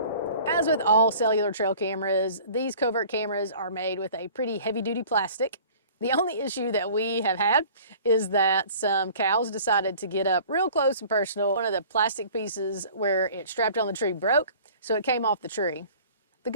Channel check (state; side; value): inverted; both; correlation -0.47